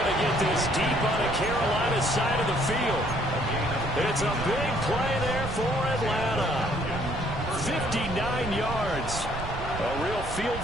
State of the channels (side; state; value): right; noise; rumble, 9 dB below the sound